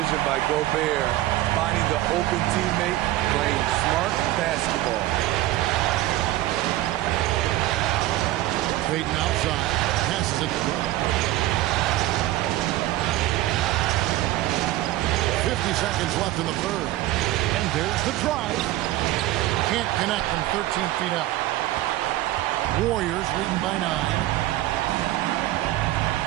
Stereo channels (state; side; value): quieter; left; 15.8 dB